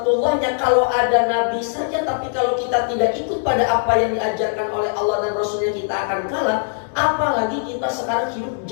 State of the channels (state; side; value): silent; right; digital silence